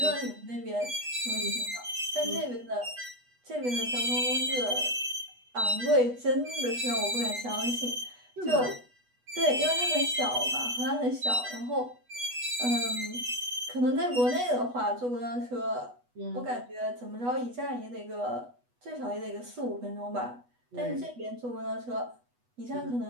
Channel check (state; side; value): late; left; 8.2 ms